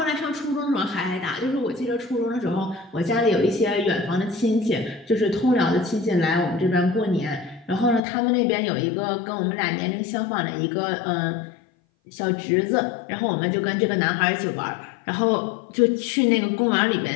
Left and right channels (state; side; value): drops out; right; at 8.0 s